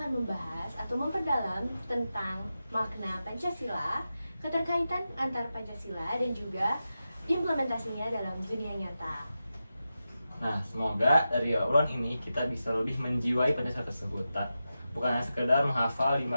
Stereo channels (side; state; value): both; inverted; correlation -0.91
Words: membahas atau memperdalam tentang makna Pancasila, keterkaitan antar Pancasila dan juga implementasinya dalam dunia nyata. Nah, semoga dari obrolan ini kita bisa lebih menjiwai Pancasila tersebut. Bukan hanya sekedar menghafal 5